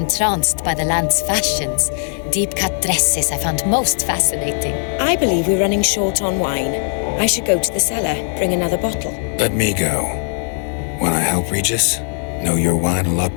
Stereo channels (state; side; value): silent; right; digital silence